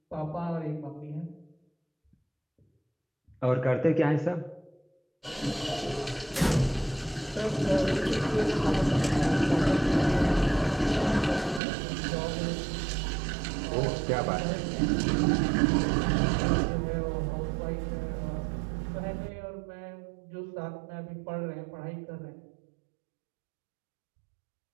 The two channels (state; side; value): drops out; left; at 11.6 s